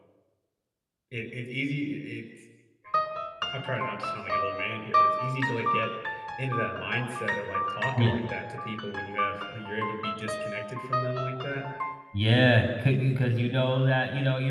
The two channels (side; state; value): both; identical; correlation 1.00